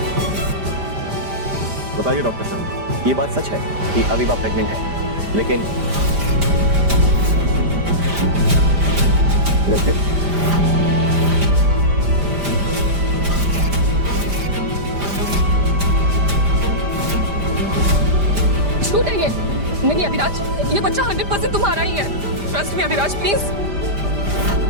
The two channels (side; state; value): left; late; 5.0 ms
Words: बताइए डॉक्टर साहब। ये बात सच है कि अविवा प्रेग्नेंट है, लेकिन झूठ है ये। नहीं अभिराज, ये बच्चा 100% तुम्हारा ही है। Trust me Abhiraj, please.